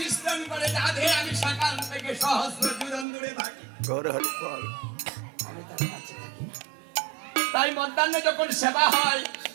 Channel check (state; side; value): drops out; left; at 3.1 s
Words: করে রাধে আমি সকাল থেকে সহস্র যুদন দূরে থাকি, আমি তার কাছে থাকি। তাই মধ্যাহ্নে যখন সেবা হয়